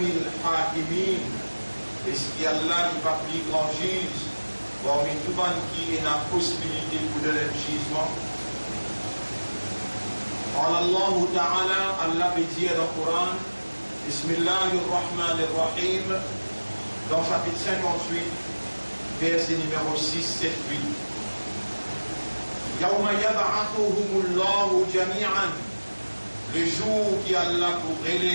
hakimin. Est-ce qu'Allah n'est pas plus grand juge parmi tout le monde qui a la possibilité pour donner le jugement? Allah Ta'ala, Allah veut dire dans le Coran, Bismillahirrahmanirrahim, dans chapitre 58, verset numéro 6, 7, 8. Yawma yab'athuhumullahu jami'an. Le jour qui Allah pour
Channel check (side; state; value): both; inverted; correlation -1.00